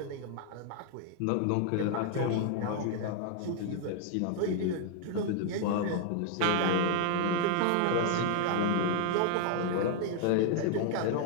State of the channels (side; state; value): both; different; correlation 0.00